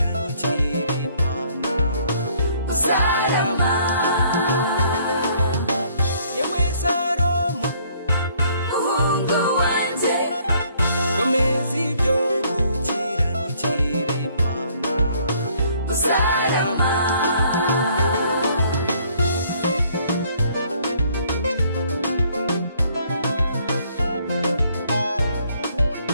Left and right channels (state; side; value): inverted; both; correlation -0.63